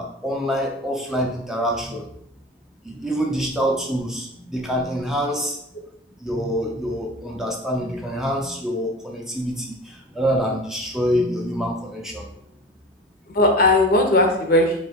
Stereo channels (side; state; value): both; normal; correlation 0.35